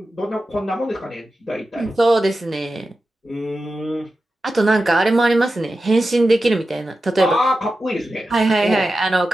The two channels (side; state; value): both; normal; correlation 0.92